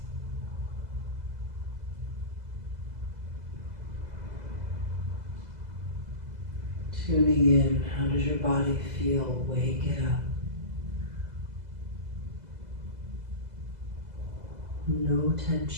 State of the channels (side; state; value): left; late; 2.0 ms